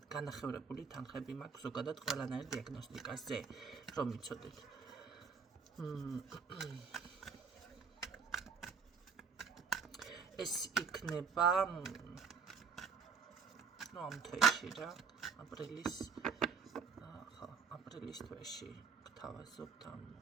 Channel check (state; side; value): quieter; left; 5.9 dB